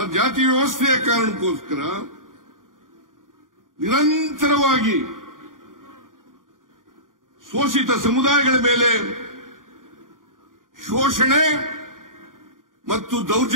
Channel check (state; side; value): late; left; 0.89 ms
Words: ಜಾತಿ ವ್ಯವಸ್ಥೆಯ ಕಾರಣಕ್ಕೋಸ್ಕರ ನಿರಂತರವಾಗಿ ಶೋಷಿತ ಸಮುದಾಯಗಳ ಮೇಲೆ ಶೋಷಣೆ ಮತ್ತು